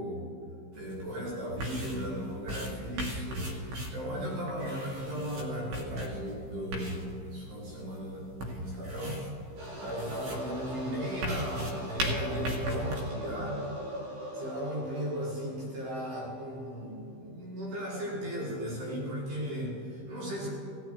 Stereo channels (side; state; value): left; late; 15 ms